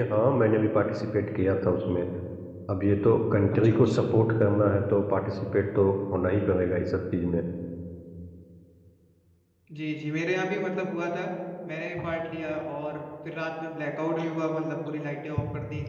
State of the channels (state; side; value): identical; both; correlation 1.00